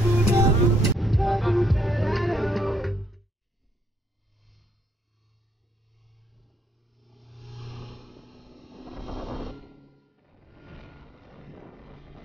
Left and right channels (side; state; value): both; normal; correlation 0.70